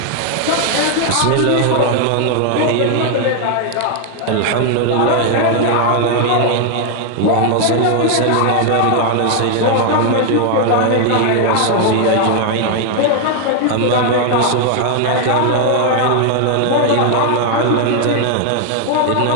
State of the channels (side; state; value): both; different; correlation 0.00